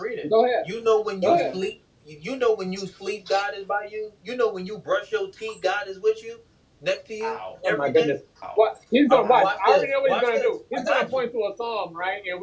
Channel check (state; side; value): identical; both; correlation 1.00